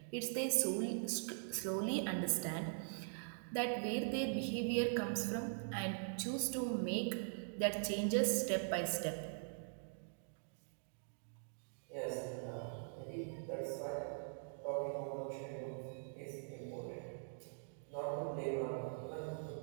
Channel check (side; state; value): left; silent; digital silence